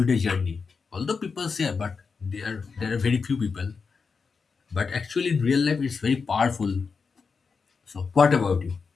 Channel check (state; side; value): quieter; right; 5.2 dB